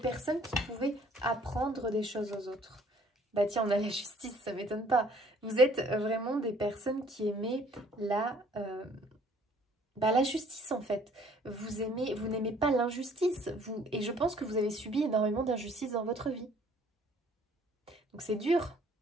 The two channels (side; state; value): both; normal; correlation 0.58